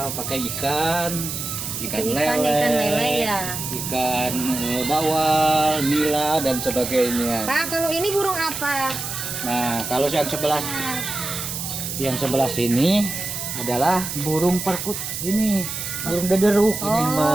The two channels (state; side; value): noise; right; hiss, 5 dB below the sound